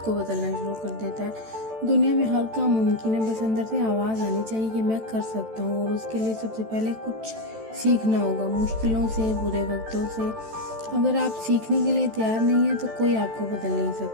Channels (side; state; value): left; late; 14 ms